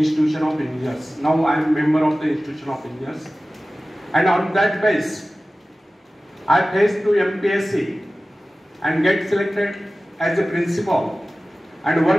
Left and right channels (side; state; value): both; normal; correlation 0.96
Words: of Engineers. Now I am member of the Institution of Engineers, and on that base, I faced to MPSC and get selected as a principal and